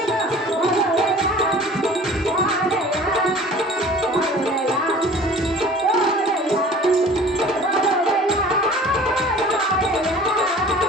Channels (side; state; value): both; normal; correlation 0.45